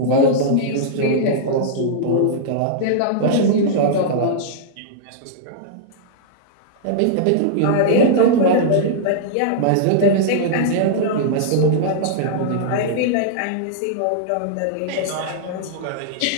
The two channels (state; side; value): different; both; correlation -0.02